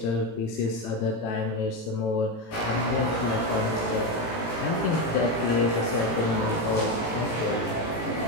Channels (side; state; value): right; late; 18 ms